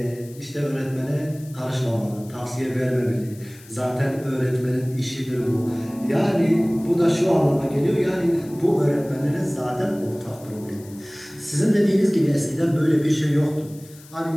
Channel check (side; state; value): left; noise; hiss, 23 dB below the sound